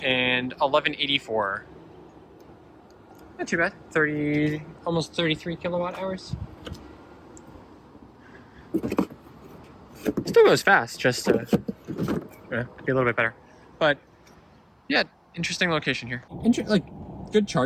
And 1184. Not too bad. Almost 33 kilowatt hours. Still goes fast, just to be a little bit better. But yeah, interesting location here. Like good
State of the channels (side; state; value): both; identical; correlation 1.00